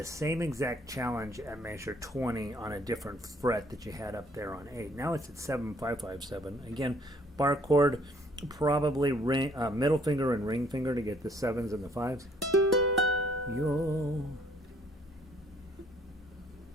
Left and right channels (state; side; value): normal; both; correlation 0.62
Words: same exact challenge at measure 20 on a different fret that you had up there on 8. Now it's at 7, 5, 5, 7. Again, bar chord, probably middle finger and ring finger to get the 7s and the 5s. You'll